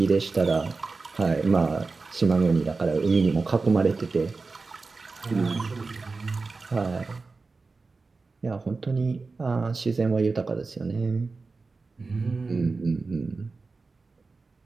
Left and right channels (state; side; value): quieter; left; 4.0 dB